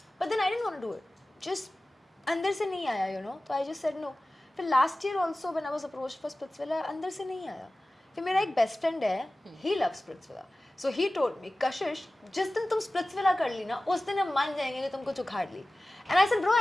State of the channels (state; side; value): normal; both; correlation 0.97